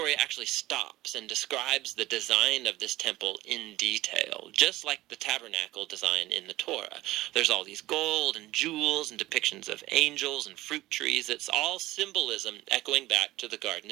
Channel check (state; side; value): quieter; left; 17.2 dB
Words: actually stops and describes the design of this temple in detail, just like the tabernacle design in the Torah. There's all these gold and jewels and depictions of angels and fruit trees. It's all symbolism echoing back to the Garden